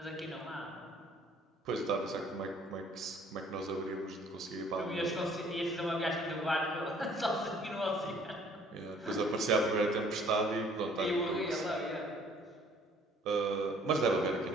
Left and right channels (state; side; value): normal; both; correlation 0.57